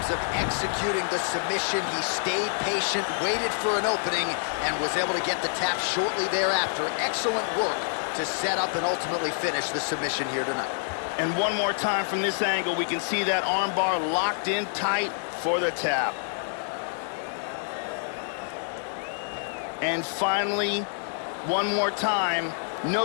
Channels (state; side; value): silent; right; 60 dB below the other